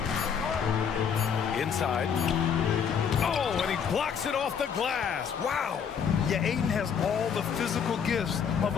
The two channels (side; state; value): right; quieter; 7.2 dB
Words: Inside. Oh, and he blocks it off the glass. Wow. Yeah, Ayton has all the physical gifts of